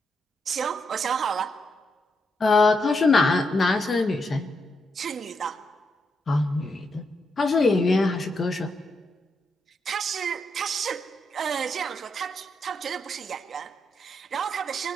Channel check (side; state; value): both; normal; correlation 0.81